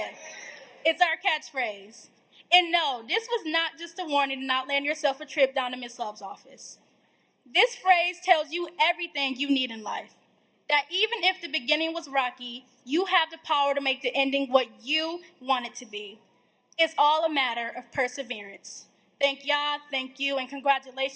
it's our catchphrase. And no, this was not just a warning to not land yourself a trip down to Miss Love's office. This phrase tells you everything you need in life. That even if the beginning was rocky, you have the power to make the ending what you want it to be. It's all a matter of perseverance. Thank y'all, thank you, and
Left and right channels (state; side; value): identical; both; correlation 1.00